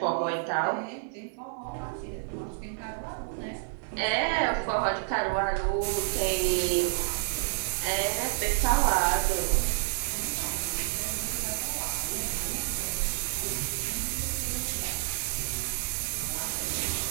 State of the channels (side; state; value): left; silent; digital silence